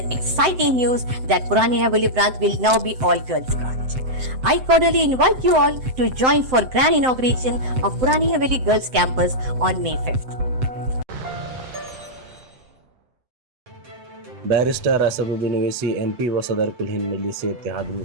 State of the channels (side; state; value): left; late; 7.8 ms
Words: exciting news that Purani Haveli branch will now be all girls branch. I cordially invite you all to join for grand inauguration of Purani Haveli Girls Campus on May 5th. Barrister Asaduddin Owaisi MP व सदर कुल हिंद मजलिस इत्तेहाद